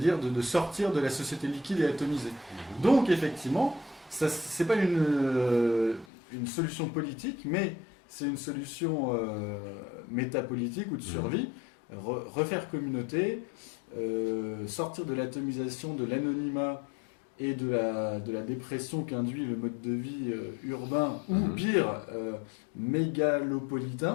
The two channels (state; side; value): drops out; right; at 6.1 s